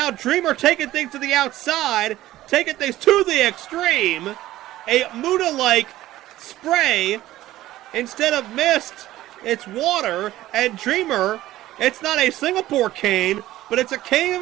Dreamer taking things to the outside, taking things to the extreme. A Muda-like spray. Instead of mist, it's water. And Dreamer, it's not a Singapore cane, but it's a cane of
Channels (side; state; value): left; quieter; 15.2 dB